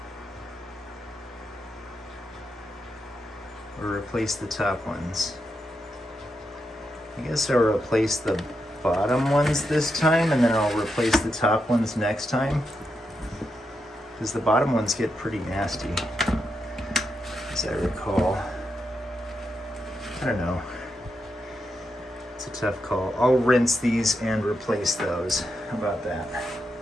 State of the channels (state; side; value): normal; both; correlation 0.84